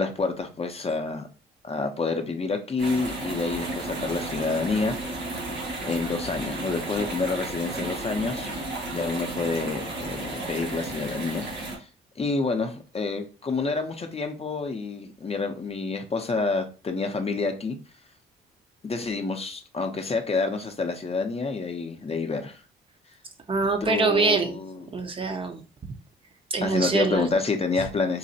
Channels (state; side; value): normal; both; correlation 0.54